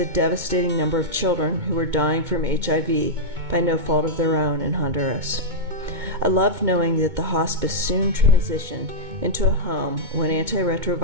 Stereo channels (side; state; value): left; late; 2.2 ms